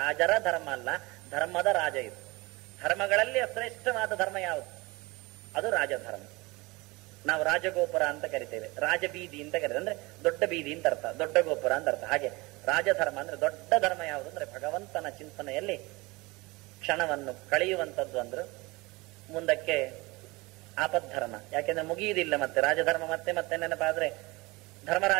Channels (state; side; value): quieter; left; 23.7 dB